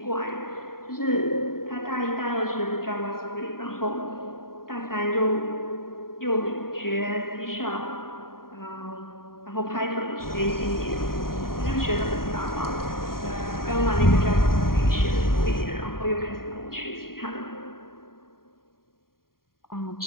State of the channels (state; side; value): late; right; 0.92 ms